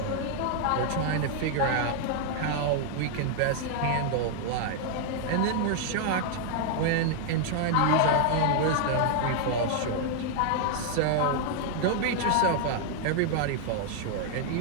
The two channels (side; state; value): both; different; correlation 0.00